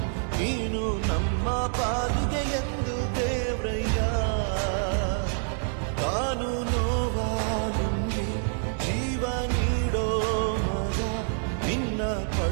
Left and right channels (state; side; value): silent; left; digital silence